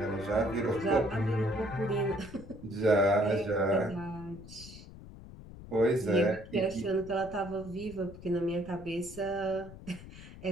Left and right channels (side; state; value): left; noise; rumble, 16 dB below the sound